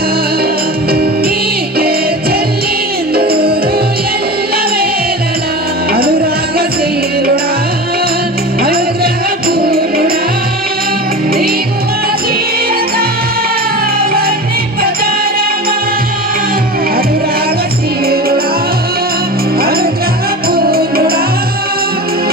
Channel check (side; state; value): both; normal; correlation 0.30